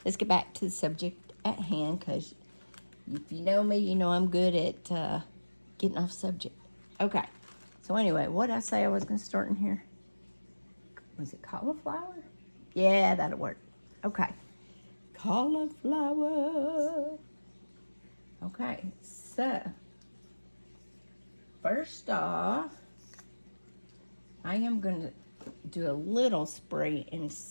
let's get back to the subject at hand, because if you know me, you know I'm good at getting off subject. Okay, so anyway, what did I say I was going to start in here? Was it cauliflower? Yeah, that'll work. Okay, cauliflower. Okay, so first off, I am going to do a little spray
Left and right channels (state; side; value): inverted; both; correlation -1.00